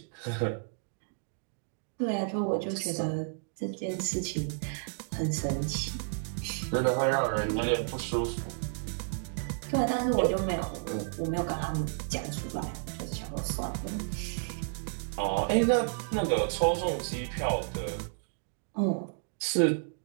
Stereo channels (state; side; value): silent; left; digital silence